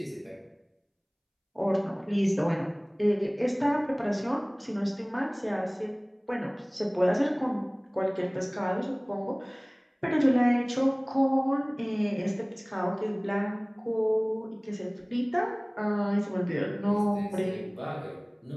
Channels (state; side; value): identical; both; correlation 1.00